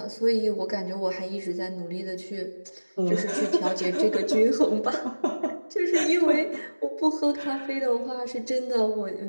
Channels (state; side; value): inverted; both; correlation -1.00